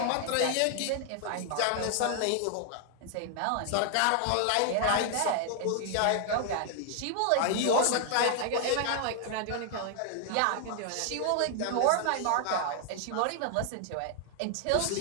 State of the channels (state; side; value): different; both; correlation 0.00